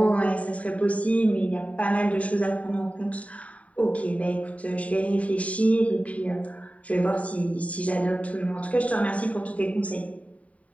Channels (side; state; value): right; late; 0.067 ms